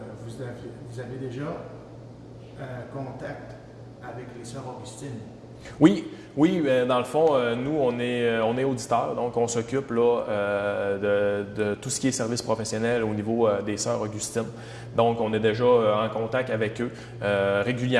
Vous avez déjà contact avec les Sœurs Augustines? Oui, dans le fond, nous, on est auditeurs, donc on s'occupe là, de tout ce qui est service professionnel au niveau des Sœurs Augustines. Donc, on est déjà en contact avec eux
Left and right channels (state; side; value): identical; both; correlation 1.00